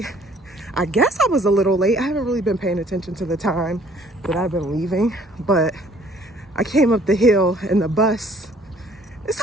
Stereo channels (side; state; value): both; normal; correlation 0.58